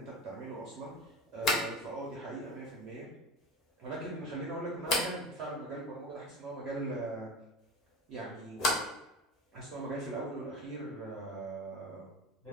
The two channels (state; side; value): normal; both; correlation 0.31